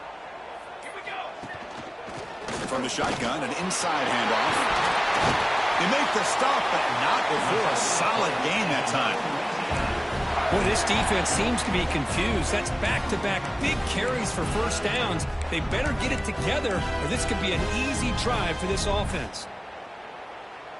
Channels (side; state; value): both; identical; correlation 1.00